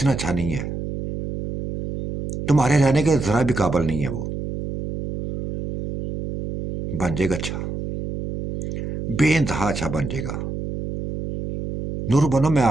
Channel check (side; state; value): right; noise; hum, 6 dB below the sound